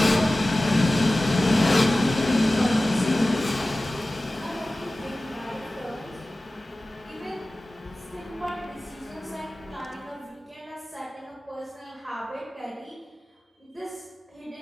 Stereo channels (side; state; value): both; normal; correlation 0.96